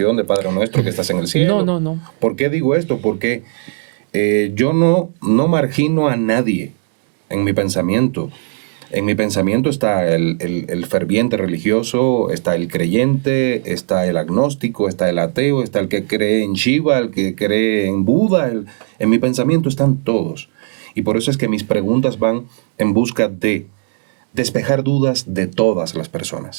de Padre Nuestro que estás en el cielo. No. ¿Por qué digo esto? Porque yo no margino a nadie en mi pensamiento. En mi pensamiento está el ferviente religioso, está el creyente, está el agnóstico, está el ateo, está el que cree en Shiva, el que cree en Buda. En mi pensamiento están todos. Y por eso es que mis preguntas van en busca de despejar dudas de todas las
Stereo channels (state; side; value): silent; left; 68 dB below the other